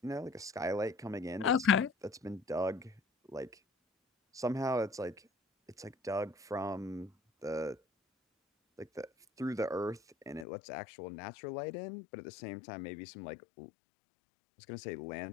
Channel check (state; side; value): drops out; right; at 10.5 s